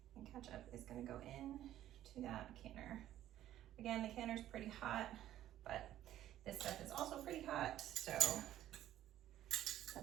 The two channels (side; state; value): left; quieter; 12.7 dB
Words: and ketchup is gonna go in to that canner. Again, the canner's pretty hot, but this stuff is also pretty hot, so